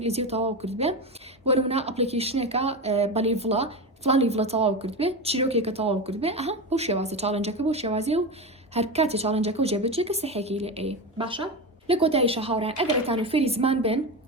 تەواو کرد بێ بۆ نمونە ئەپلیکیشنێکە بەلی ڤڵە فلانی ڤڵە تەواو کرد بێ چیرۆکێکە تەواو کرد بێ ئەها بۆ شێوازە چالنجەکە بۆ شێوازی و هەر کاتی چالنجەکە و جێبەجێکە سەحێکی لێ ئەی باشە لە کۆتاییشە هاوڕێن ئەگەرتان و فێری زمان بن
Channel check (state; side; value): normal; both; correlation 0.20